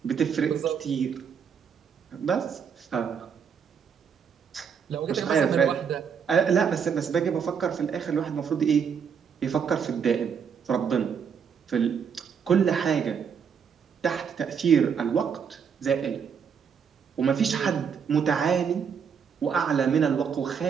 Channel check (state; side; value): quieter; left; 6.9 dB